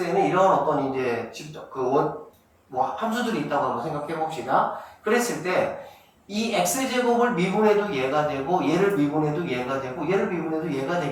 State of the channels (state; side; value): identical; both; correlation 1.00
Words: 이런 어떤 이제 함수들이 있다고 한번 생각해 봅시다. 그랬을 때 이 x제곱을 미분해도 얘가 되고 얘를 미분해도 얘가 되고 얘를 미분해도 얘가